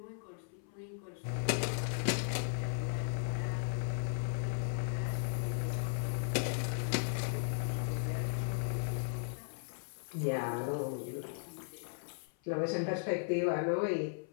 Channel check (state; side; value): silent; right; 53 dB below the other